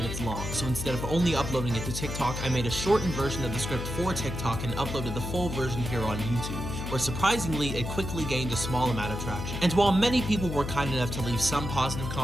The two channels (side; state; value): left; noise; hum, 5 dB below the sound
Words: long, so instead of only uploading it to TikTok, I made a shortened version of the script for TikTok and uploaded the full version here on YouTube, where surprisingly it quickly gained a small amount of traction. And while many people were kind enough to leave some positive